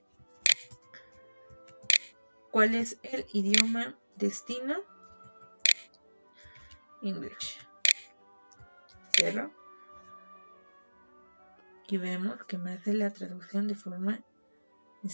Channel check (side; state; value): both; inverted; correlation -1.00